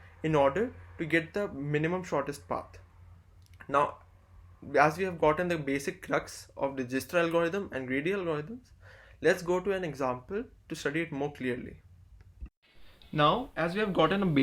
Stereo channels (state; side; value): identical; both; correlation 1.00